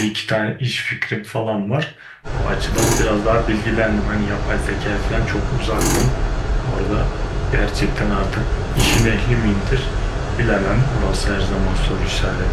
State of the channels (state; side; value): identical; both; correlation 1.00